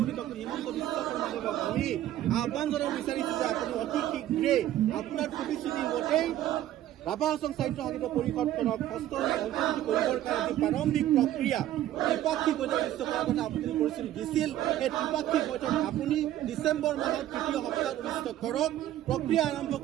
ডক্টৰ হিমন্ত বিশ্ব শৰ্মাদেৱক আমি আহ্বান জনাব বিচাৰিছোঁ যে আপুনি অতি শীঘ্ৰেই আপোনাৰ প্ৰতিশ্ৰুতি মতেই ৰাভা হাছং সাহিত্য সাহিত্য পৰিষদখনক হস্তক্ষেপ অন্তৰ্ভুক্ত কৰিবৰ কাৰণে যি প্ৰাৰম্ভিক প্ৰক্ৰিয়া ত্ৰিপাক্ষিক বৈঠক অনুষ্ঠিত কৰাৰ কথা আপুনি পৰিস্থিতি দিছিল, সেই ত্ৰিপাক্ষিক বৈঠক আপুনি ডিচেম্বৰ মাহৰ তৃতীয় সপ্তাহত অনুষ্ঠিত কৰক। প্ৰক্ৰিয়া আৰম্ভ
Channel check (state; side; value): quieter; left; 12.9 dB